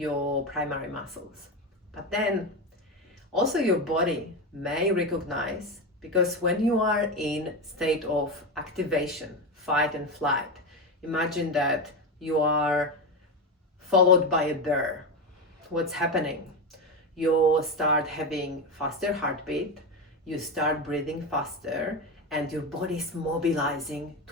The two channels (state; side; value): normal; both; correlation 0.16